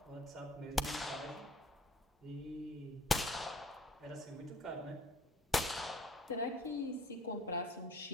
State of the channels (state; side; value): normal; both; correlation 0.54